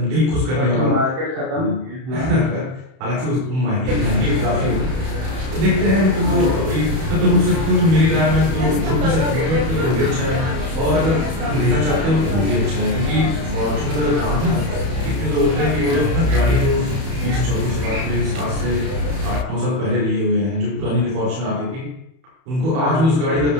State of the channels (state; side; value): late; left; 31 ms